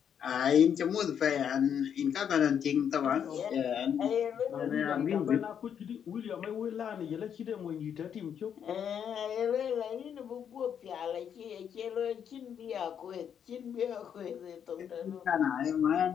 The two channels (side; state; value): right; quieter; 8.3 dB